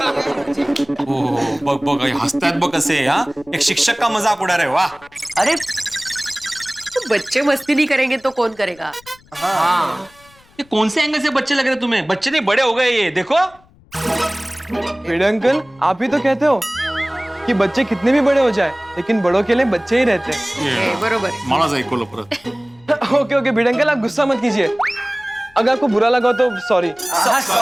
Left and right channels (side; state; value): left; noise; rumble, 29 dB below the sound